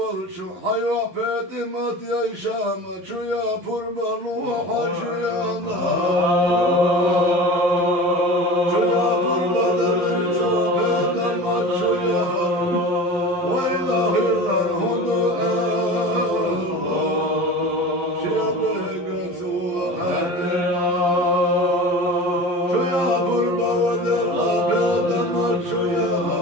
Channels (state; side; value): late; left; 11 ms